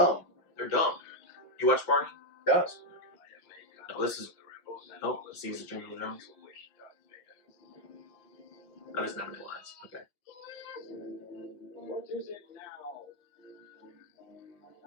They're dumb. You watch Barney? Yes. No, this is. Oh, this is the Jingle Jones. That is not any lines. Okay. What is it now?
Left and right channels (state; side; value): late; right; 5.6 ms